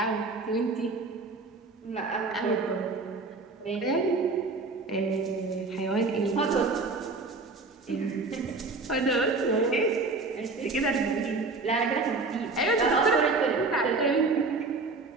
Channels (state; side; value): quieter; left; 3.7 dB